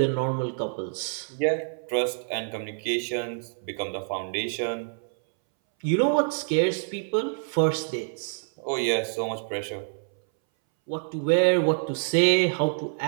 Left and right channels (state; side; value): silent; left; 60 dB below the other